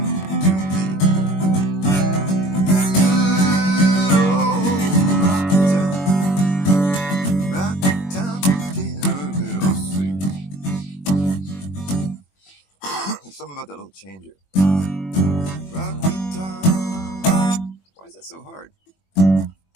to me. Good old rock guitar, little sweet. Something about that little changer. Rock guitar, why is that so hard?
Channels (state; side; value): late; right; 21 ms